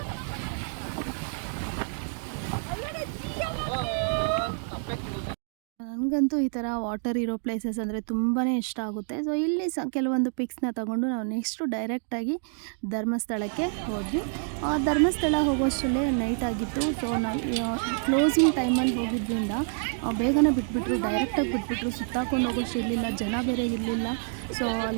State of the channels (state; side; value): silent; left; 59 dB below the other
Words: ನನಗಂತೂ ಈ ಥರ ವಾಟರ್ ಇರೋ ಪ್ಲೇಸಸ್ ಅಂದರೆ ತುಂಬಾ ಇಷ್ಟ ಆಗುತ್ತೆ. ಸೊ ಇಲ್ಲಿ ಕೆಲವೊಂದು ಪಿಕ್ಸ್ನ ತಗೊಂಡು ನಾವು ನೆಕ್ಸ್ಟು ಡೈರೆಕ್ಟಾಗಿ ಧರ್ಮಸ್ಥಳಕ್ಕೆ ಹೋದ್ವಿ. ಧರ್ಮಸ್ಥಳ ಹೋಗೋಷ್ಟರಲ್ಲೇ ನೈಟ್ ಆಗಿತ್ತು. ಸೊ ನಾವು ಕ್ಲೋಸಿಂಗ್ ಟೈಮಲ್ಲಿ ಹೋಗಿದ್ದರಿಂದ ಬೇಗನೆ ಬಿಟ್ಬಿಟ್ರು, ಡೈರೆಕ್ಟಾಗಿ ಬಿಟ್ಬಿಟ್ರು. ಸುತ್ತಾಕೊಂಡು ಹೋಗೋಷ್ಟು ಇರಲಿಲ್ಲ, ಜನ ಬೇರೆ ಇರಲಿಲ್ಲ. ಸೊ